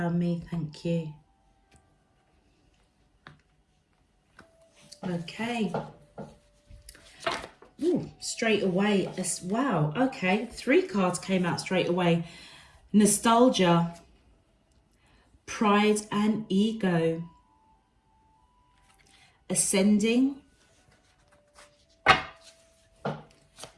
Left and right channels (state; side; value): identical; both; correlation 1.00